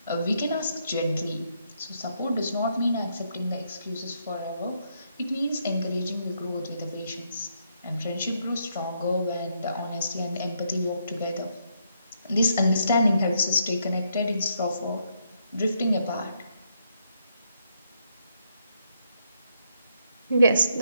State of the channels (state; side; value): inverted; both; correlation -0.76